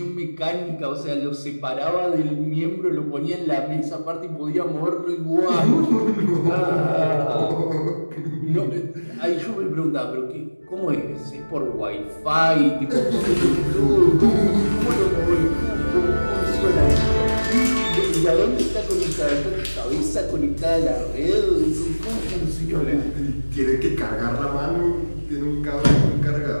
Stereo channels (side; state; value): both; inverted; correlation -1.00